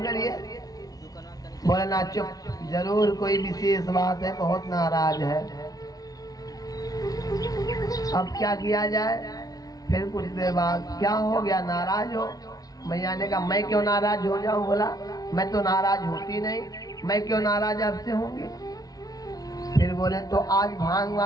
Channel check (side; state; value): right; late; 0.18 ms